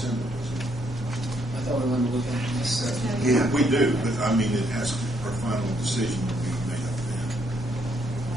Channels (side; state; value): both; normal; correlation 0.72